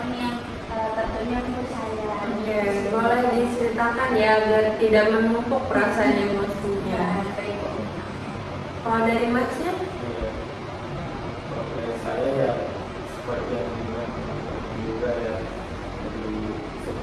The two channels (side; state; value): both; identical; correlation 1.00